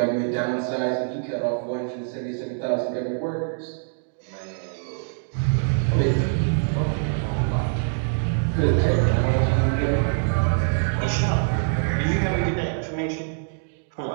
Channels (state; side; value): silent; left; digital silence